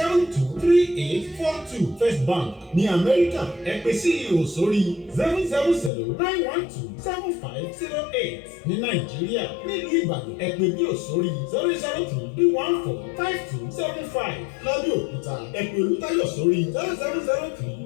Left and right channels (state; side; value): drops out; right; at 5.9 s